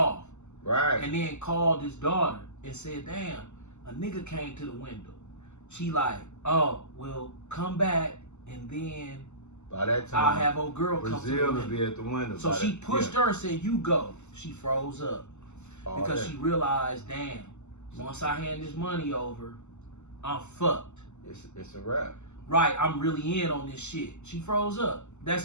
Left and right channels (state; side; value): late; right; 0.83 ms